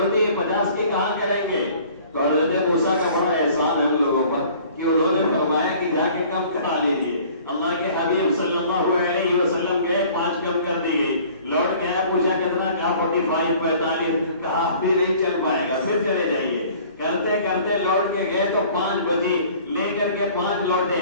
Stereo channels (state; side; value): inverted; both; correlation -0.51